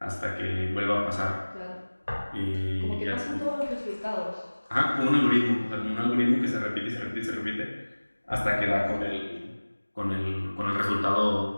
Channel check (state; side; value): inverted; both; correlation -1.00